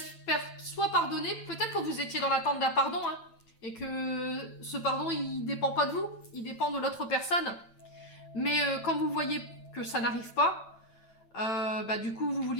faire soit pardonner, peut-être que vous étiez dans l'attente d'un pardon, hein, et que ce pardon, il dépend pas de vous, il dépend de l'autre personne. Mais quand vous voyez que ça n'arrive pas, du coup, vous vous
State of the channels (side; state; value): right; late; 9.0 ms